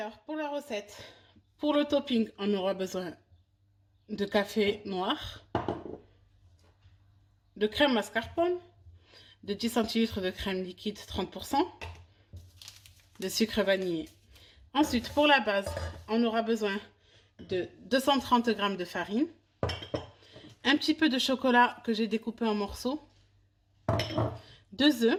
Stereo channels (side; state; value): both; identical; correlation 1.00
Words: pour la recette, pour le topping, on aura besoin de café noir, de crème mascarpone, de 10 centilitres de crème liquide 30%, de sucre vanillé. Ensuite, pour la base, on aura besoin de 230 g de farine, un petit peu de chocolat que j'ai découpé en morceaux, 2